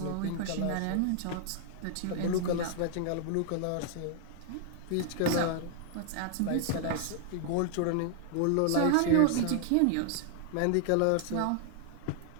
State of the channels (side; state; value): both; different; correlation 0.00